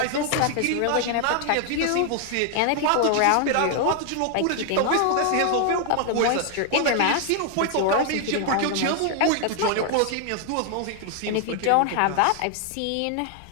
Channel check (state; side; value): different; both; correlation 0.00